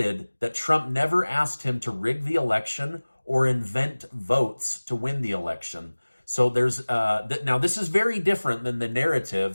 that Trump never asked him to rig the election or invent votes to win the election. So there's now this is very different than the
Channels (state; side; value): inverted; both; correlation -1.00